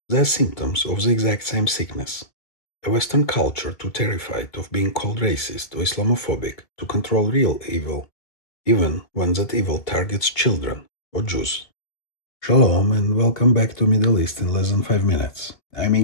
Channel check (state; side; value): late; right; 2.3 ms